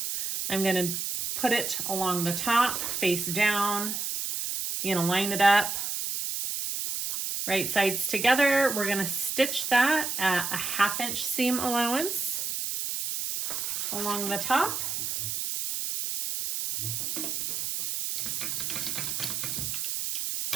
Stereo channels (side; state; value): right; noise; hiss, 2 dB below the sound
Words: I'm gonna put it along the top, face down. You're gonna line it up, right sides together. We're gonna stitch that at a 1/2 inch seam allowance along the top.